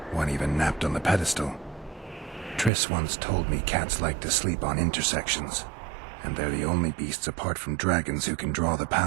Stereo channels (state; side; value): drops out; left; at 2.7 s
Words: One even napped on the pedestal. Triss once told me cats like to sleep on intersections, and they're the only beasts apart from dragons who can draw the